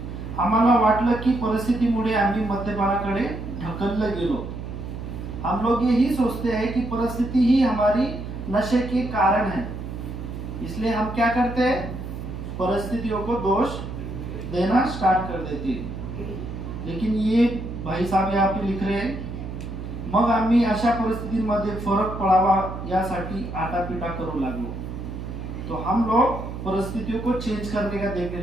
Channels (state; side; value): noise; right; hum, 8 dB below the sound